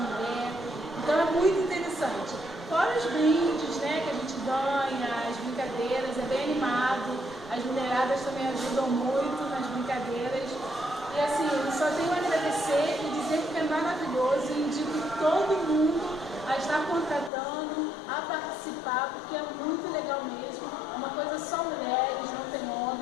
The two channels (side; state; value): right; drops out; at 17.3 s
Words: então é muito interessante. Fora os brindes, né, que a gente ganha, as brincadeiras, é bem animado, as mulheradas também ajudam muito nas brincadeiras. E assim, eu só tenho a agradecer e dizer que é maravilhoso e indico todo mundo a estar contratando, a participar, porque é muito legal mesmo. É uma coisa só mulheres, não tem